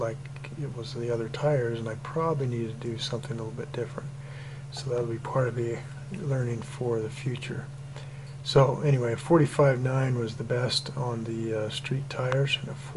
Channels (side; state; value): both; identical; correlation 1.00